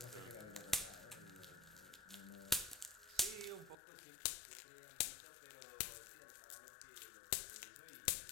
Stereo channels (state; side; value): drops out; right; at 3.8 s